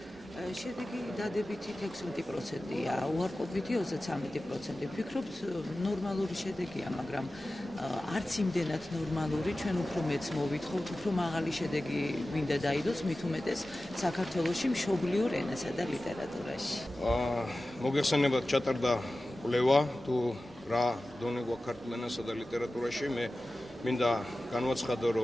შედეგი დადებითი 16%-ია, უარყოფითი 33%. ვფიქრობთ, ნორმალური შედეგია, მაგრამ არც იმდენად ნორმალური, ჩვენ უფრო მეც მოვითხოვთ, უფრო მაღალი შედეგი მინდა დაიდოს, მით უმეტეს საქართველოში მშობლიურ ენასა და ლიტერატურაში. მოგეხსენებათ ჩატარდა კვლევა თუ რა დონე გვაქვს ქართულ ენასა და ლიტერატურაში. მე მინდა განვაცხადო,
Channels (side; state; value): both; normal; correlation 0.95